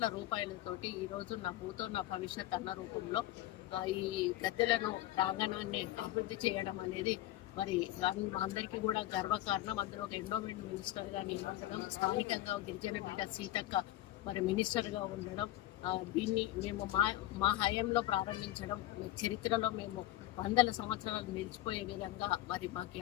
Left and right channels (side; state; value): right; quieter; 15.2 dB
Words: రూపాయలతోటి ఈరోజు నా భూతో నా భవిష్యత్ అన్న రూపంలో ఈ గద్దెలను ప్రాంగణాన్ని అభివృద్ధి చేయడం అనేది మరి అందరికీ కూడా గర్వకారణం. అందులో ఒక ఎండోమెంట్ మినిస్టర్గా నిలబడడం, స్థానికంగా గిరిజన బిడ్డ సీతక్క మరి మినిస్టర్గా ఉండడం, దీన్ని మేము మా హయాంలో ప్రారంభించడం, చరిత్రలో మేము 100 సంవత్సరాలు నిలిచిపోయే విధంగా మరి మాకు